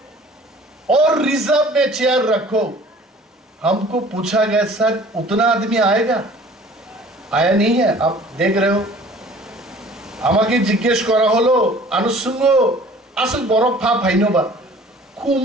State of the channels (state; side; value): normal; both; correlation 0.50